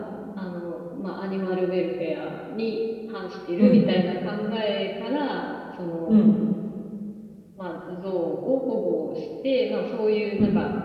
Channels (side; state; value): both; identical; correlation 1.00